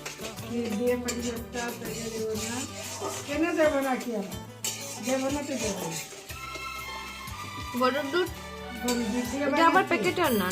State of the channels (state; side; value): identical; both; correlation 1.00